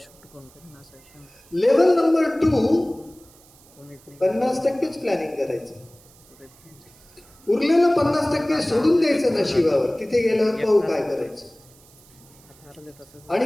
लेवल नंबर 2, 50%च प्लॅनिंग करायचं, उरलेलं 50% सोडून द्यायचं नशिबावर. तिथे गेल्यावर पाहू काय करायचं.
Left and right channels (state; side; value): noise; right; hiss, 26 dB below the sound